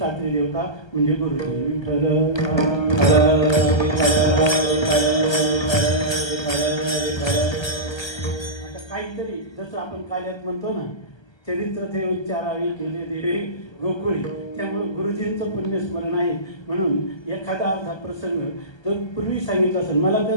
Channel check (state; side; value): late; right; 1.3 ms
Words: देवता म्हणजे गुरुजी. विठ्ठल काहीतरी जसं आपण काल्यात म्हणतो ना चरित्र ते उच्चारावे केले देवे गोकुळी त्यामुळे गुरुजींचं पुण्यस्मरण आहे म्हणून एखादा असा प्रसंग तो पूर्वी सांगितला असेल मला